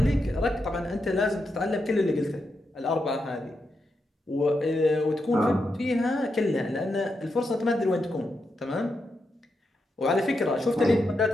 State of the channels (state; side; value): normal; both; correlation 0.85